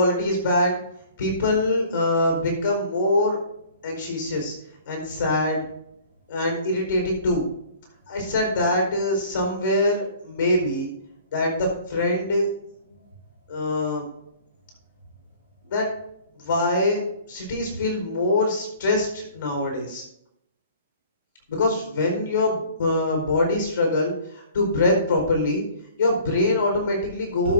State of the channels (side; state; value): both; inverted; correlation -0.51